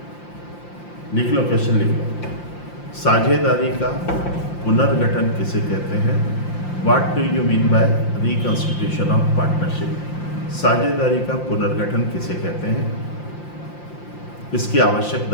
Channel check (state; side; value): late; right; 5.7 ms